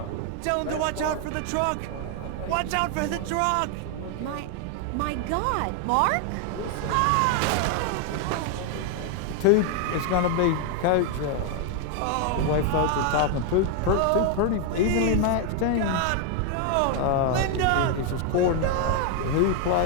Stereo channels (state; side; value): different; both; correlation 0.00